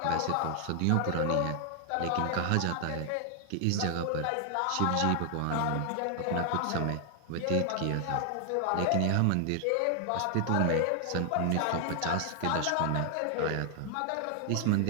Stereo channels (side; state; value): both; different; correlation 0.00